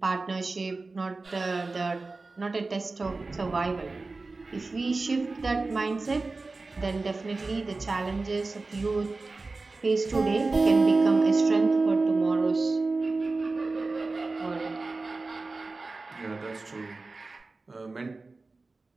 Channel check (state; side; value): quieter; left; 3.6 dB